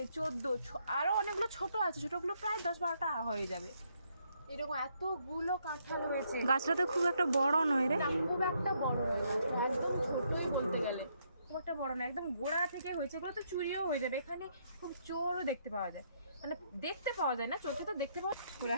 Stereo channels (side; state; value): both; inverted; correlation -0.73